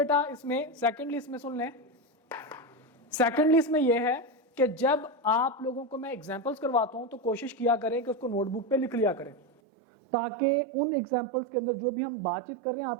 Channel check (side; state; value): left; drops out; at 9.5 s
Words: इसमें सुन लें, सेकेंडली इसमें यह है कि जब आप लोगों को मैं एग्जांपल्स करवाता हूं तो कोशिश किया करें कि उसको नोटबुक पे लिख लिया करें ताकि उन एग्जांपल्स के अंदर जो भी हम बातचीत कर रहे हैं